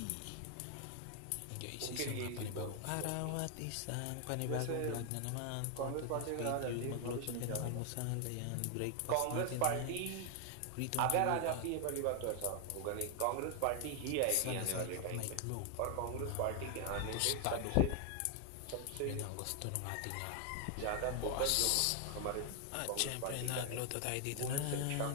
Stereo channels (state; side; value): different; both; correlation 0.00